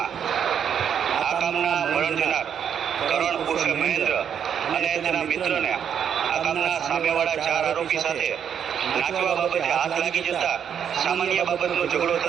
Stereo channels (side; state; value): left; quieter; 8.3 dB